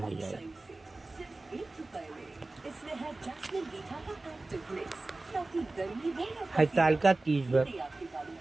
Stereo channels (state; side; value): quieter; left; 3.1 dB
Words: जाए। हरतालिका तीज व्रत